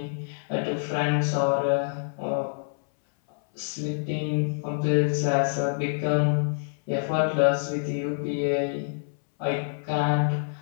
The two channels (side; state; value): right; silent; 60 dB below the other